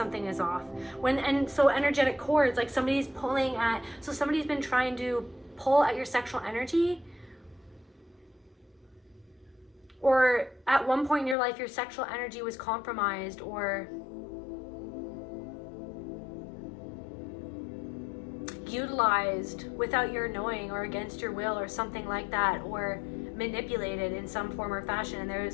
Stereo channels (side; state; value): right; drops out; at 11.4 s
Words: is off. So energetic cords, like somebody's been trying to pull at your sexual energy, or at one point in your life your sexual energy was compromised or utilized without your knowing or against your will or something like that, or manipulated in some form or fashion, and